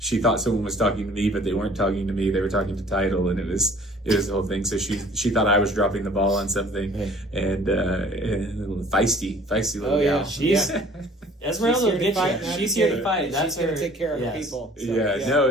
thought someone was talking to me, but they weren't talking to me. They were talking to Title, and it was the whole thing. So she thought I was dropping the ball on something, and a little feisty little gal. She's Esmeralda will get you. She's here to fight. She's going to take care of her people.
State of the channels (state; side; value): normal; both; correlation 0.51